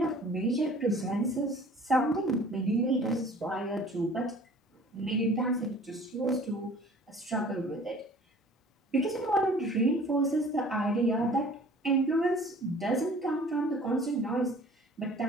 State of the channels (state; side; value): normal; both; correlation 0.49